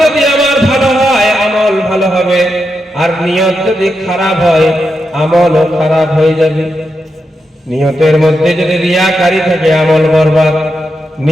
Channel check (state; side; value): normal; both; correlation 0.86